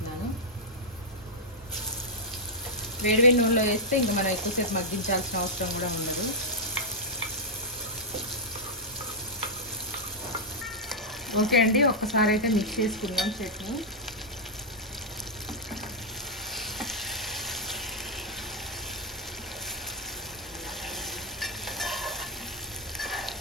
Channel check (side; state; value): both; normal; correlation -0.04